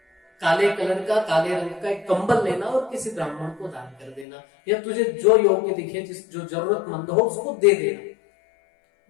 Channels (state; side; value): drops out; right; at 4.2 s